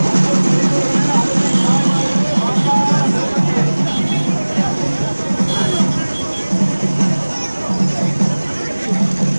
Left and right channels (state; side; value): inverted; both; correlation -1.00